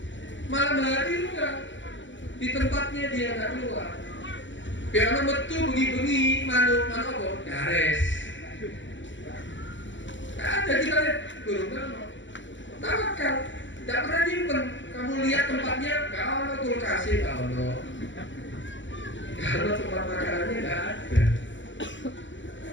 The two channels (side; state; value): right; late; 0.54 ms